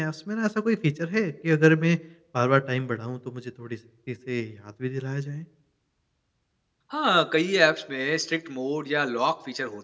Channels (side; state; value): both; identical; correlation 1.00